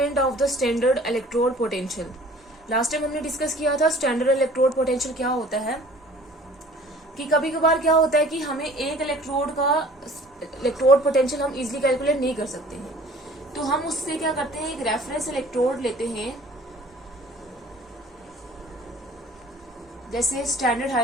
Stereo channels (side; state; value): both; normal; correlation 0.50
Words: of the standard electrode potential. Last time हमने डिस्कस किया था स्टैंडर्ड इलेक्ट्रोड पोटेंशियल क्या होता है, कि कभी कभार क्या होता है कि हमें एक इलेक्ट्रोड पोटेंशियल हम इजीली कैलकुलेट नहीं कर सकते हैं, तो हम उससे क्या करते हैं, एक रेफरेंस इलेक्ट्रोड लेते हैं, जैसे स्टैंडर्ड